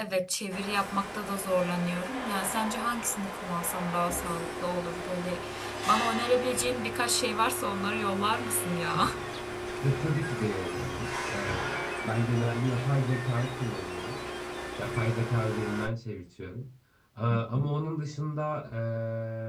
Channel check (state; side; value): identical; both; correlation 1.00